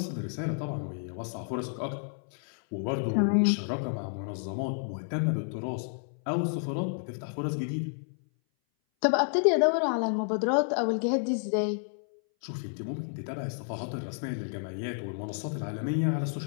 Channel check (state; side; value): silent; right; 58 dB below the other